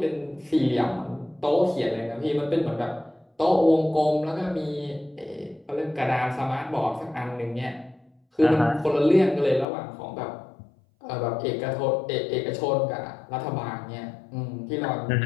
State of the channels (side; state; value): right; drops out; at 9.7 s